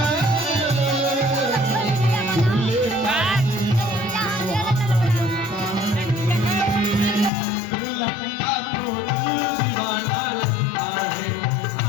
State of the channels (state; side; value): drops out; right; at 7.3 s